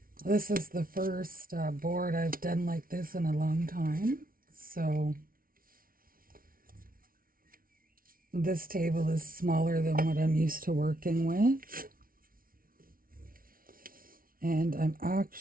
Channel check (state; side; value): late; left; 0.42 ms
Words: This is the first board I've done like this in a long time. So this table is smaller than what I'm used to working with. And I'm